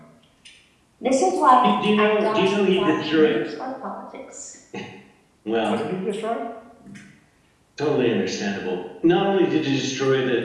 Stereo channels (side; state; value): both; identical; correlation 1.00